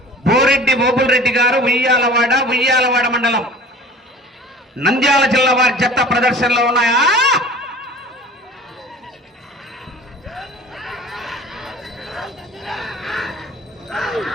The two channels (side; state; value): both; normal; correlation 0.42